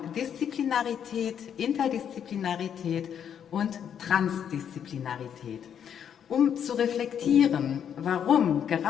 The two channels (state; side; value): quieter; right; 8.6 dB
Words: Disziplinarität, Interdisziplinarität und Transdisziplinarität, um zu reflektieren, warum